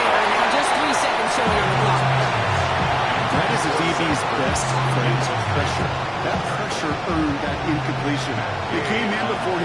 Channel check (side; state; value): both; identical; correlation 1.00